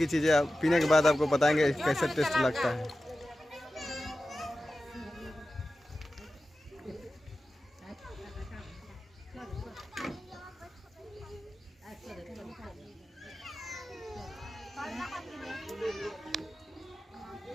चीज़ें पीने के बाद आपको बताएंगे कैसे टेस्ट लगता है।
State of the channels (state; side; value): normal; both; correlation 0.94